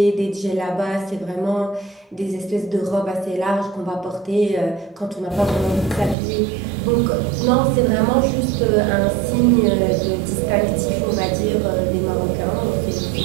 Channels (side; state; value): left; drops out; at 6.2 s